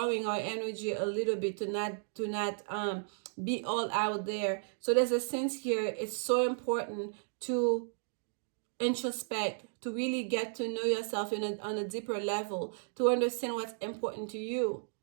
our energy a little bit to not be all out there. So there's a sense here, it's so important to introspect, to really get to know yourself on a deeper level, to understand what's important to you,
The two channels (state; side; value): silent; left; digital silence